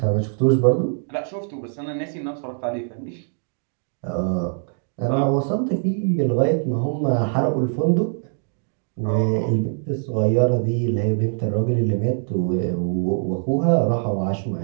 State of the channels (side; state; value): left; silent; 64 dB below the other